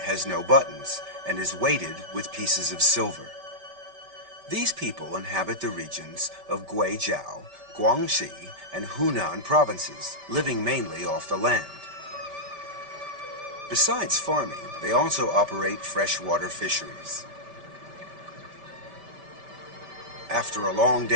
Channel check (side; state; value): left; late; 5.1 ms